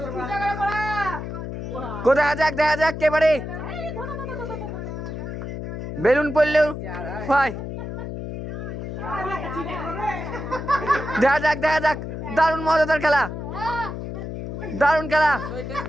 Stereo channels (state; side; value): noise; left; hum, 6 dB below the sound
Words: কোথায় যাক দেখা যাক কে পারে। বেলুন পড়লেও হয়। দেখা যাক দেখা যাক। দারুণ মজাদার খেলা, দারুণ খেলা।